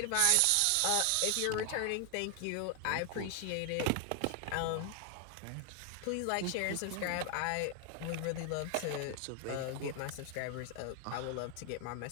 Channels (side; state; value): both; different; correlation 0.00